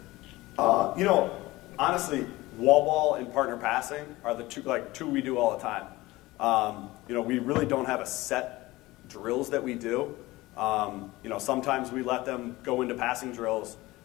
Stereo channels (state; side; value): quieter; right; 19.4 dB